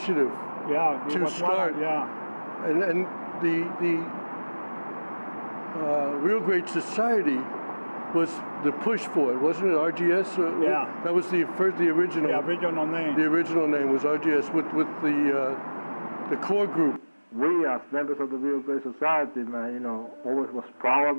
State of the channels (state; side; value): inverted; both; correlation -1.00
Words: Yeah. To start. And the Real Great Society was the push for it, wasn't it? RGS? Yeah. That was the original. The original name. The original name was RGS with the core group. We as members of the Real Great Society, man, you know, always was proud